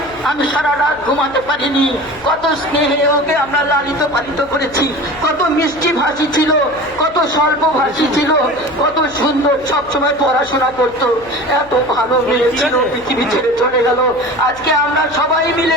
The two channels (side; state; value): left; noise; hum, 21 dB below the sound